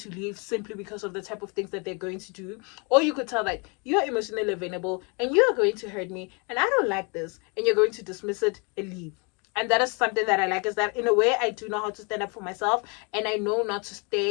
leave simply because of the type of things that they're going to do. Or you could tell that you're emotionally available and you are going to hurt me and I don't like this, and you're going to dismiss it and leave. And that is something that I like, is that in a way I do know how to stand up for myself, and I know not to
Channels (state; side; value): quieter; right; 32.9 dB